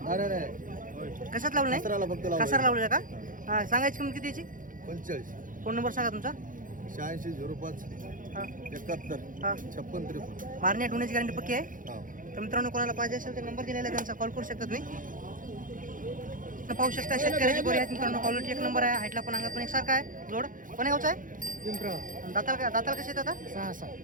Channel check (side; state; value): left; late; 0.39 ms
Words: नाही कशात लावलं नाही? फक्त कसार लावलेलं का? सांगायची किंमत किती याची? 45 फोन नंबर सांगा तुमचा. 86 05 हां 71 हां. 56 53. मारण्या ठेवण्याची गॅरंटी पक्की आहे. हा. तर मित्रांनो कोणाला पाहिजे असेल तर नंबर दिलेला आहे, त्यांचा कॉल करू शकता तुम्ही. पाहू शकता शेतकऱ्याची गोरी आहेत मित्रांनो. क्वालिटी 1 नंबर आहे. हाईटला पण अंगात पण एकसारखा आहे. जोड कोण्या गावचा आहे? दाताला कसे आहेत आता? 6